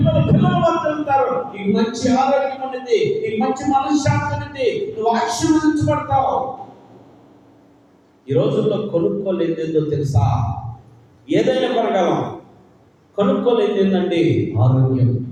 వర్ధిల్లుతారు, నీకు మంచి ఆరోగ్యం ఉన్నది, నీకు మంచి మనశ్శాంతి ఉన్నది, నువ్వు ఆశీర్వదించబడతావు. ఈ రోజుల్లో కొనుక్కోలేదు ఏందో తెలుసా? ఏదైనా కొనగలం. కొనుక్కోలేదు ఏంటండి? ఆరోగ్యం.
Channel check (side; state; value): both; identical; correlation 1.00